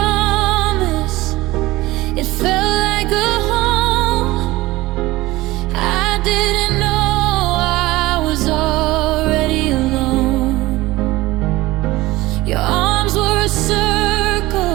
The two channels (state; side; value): quieter; left; 18.9 dB